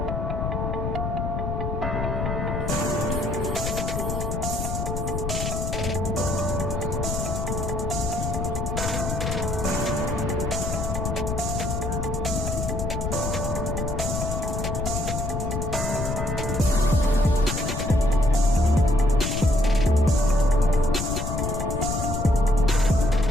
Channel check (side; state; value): left; noise; rumble, 2 dB below the sound